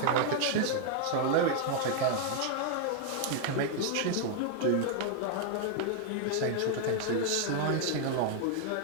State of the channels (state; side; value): different; both; correlation 0.00